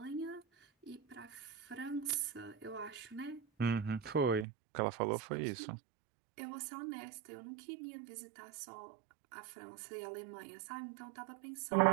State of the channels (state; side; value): drops out; left; at 4.5 s